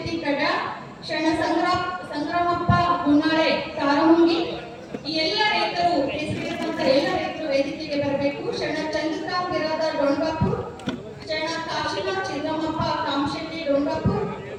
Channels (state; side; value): identical; both; correlation 1.00